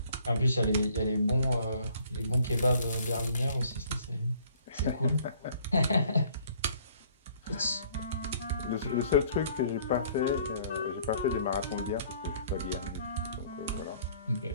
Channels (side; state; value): both; inverted; correlation -0.58